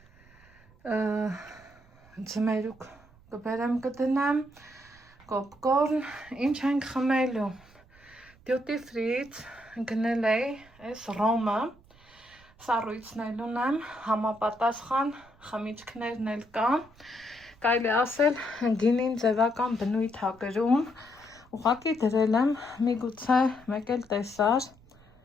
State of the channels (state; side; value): noise; right; rumble, 27 dB below the sound